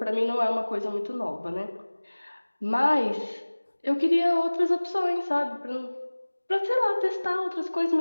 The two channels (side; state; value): both; inverted; correlation -1.00